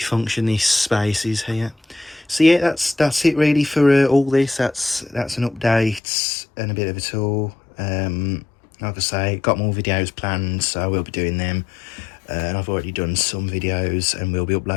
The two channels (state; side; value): drops out; right; at 6.0 s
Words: this space is here. So yeah, that's it really for all this. That's an update and a bit of a tour. Like I say, got more videos planned, so I will be doing them. And I've already done some videos, and we'll be